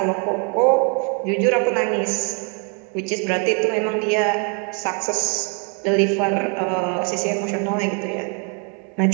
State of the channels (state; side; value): quieter; left; 38.1 dB